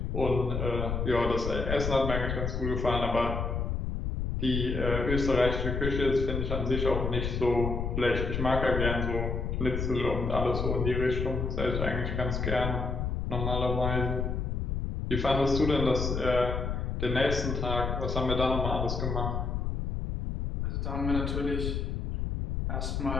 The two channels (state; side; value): noise; left; rumble, 2 dB below the sound